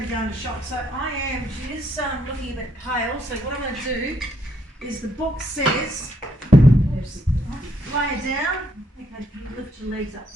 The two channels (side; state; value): both; normal; correlation 0.72